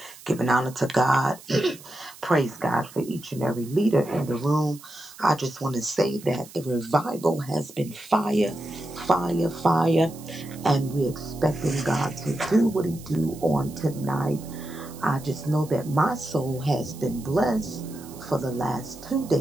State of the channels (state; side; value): noise; right; hiss, 19 dB below the sound